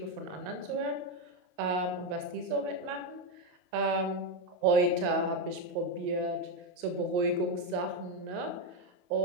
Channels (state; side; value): late; left; 28 ms